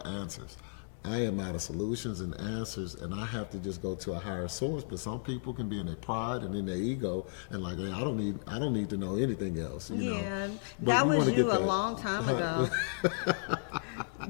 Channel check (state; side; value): silent; right; digital silence